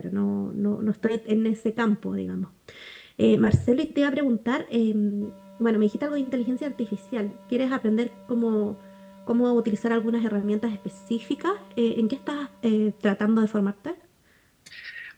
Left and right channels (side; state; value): both; identical; correlation 1.00